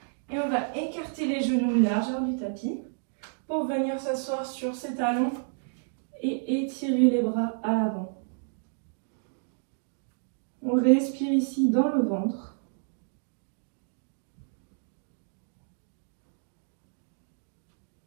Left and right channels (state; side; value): silent; left; digital silence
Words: Et on va écarter les genoux largeur du tapis pour venir s'asseoir sur ses talons et étirer les bras à l'avant. On respire ici dans le ventre.